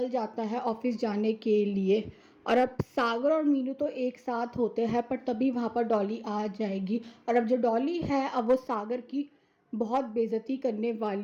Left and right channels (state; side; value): identical; both; correlation 1.00